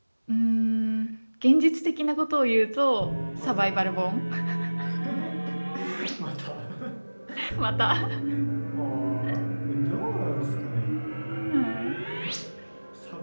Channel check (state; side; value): inverted; both; correlation -1.00